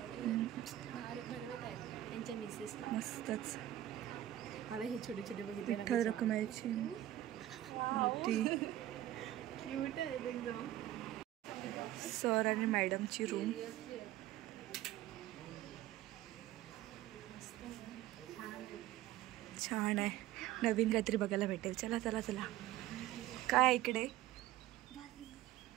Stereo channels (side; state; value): left; quieter; 14.1 dB